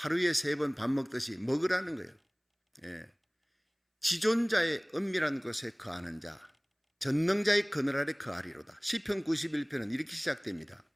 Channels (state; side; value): identical; both; correlation 1.00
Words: 3번 밥 먹듯이 먹으라는 거예요. 지존자의 은밀한 곳에 거하는 자, 전능자의 그늘 아래 거하리로다. 시편 91편은 이렇게 시작됩니다.